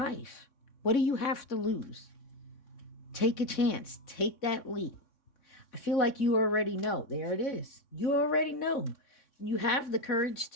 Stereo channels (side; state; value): right; late; 3.6 ms